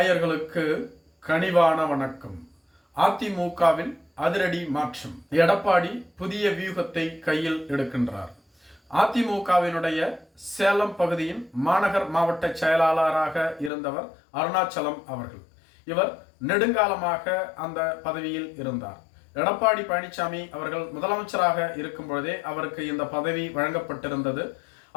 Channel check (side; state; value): right; drops out; at 13.7 s